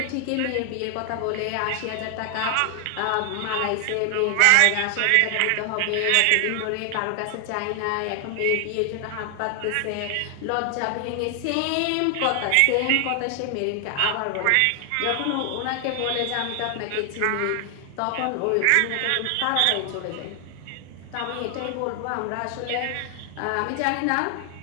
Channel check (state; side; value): different; both; correlation 0.00